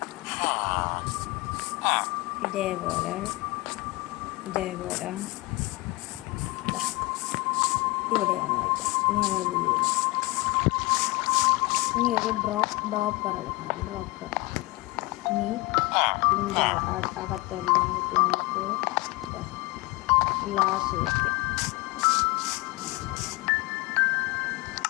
ഇതേപോലെ ഇവിടെയാണ് വയ്ക്കാം. ഇനി നമ്മൾ വീഴും. ഇനി ഒരു ഡ്രോപ്പർ എടുക്കണം. ഡ്രോപ്പർ ഇനി ഇതിൻ്റെ അകത്തെല്ലാം നമുക്ക് ഗ്ലാസ് വയ്ക്കാം.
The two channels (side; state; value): right; quieter; 22.5 dB